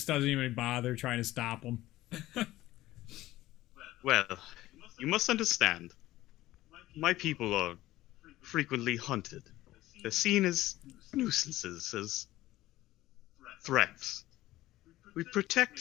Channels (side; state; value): right; quieter; 16.1 dB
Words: doesn't even bother trying to stop him. Well, you must understand. My people are frequently hunted. They're seen as nuisances, as threats. We